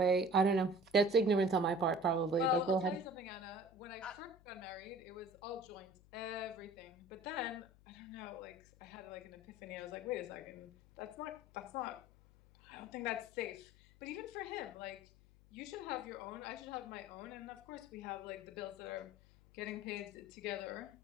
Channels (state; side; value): noise; left; hum, 25 dB below the sound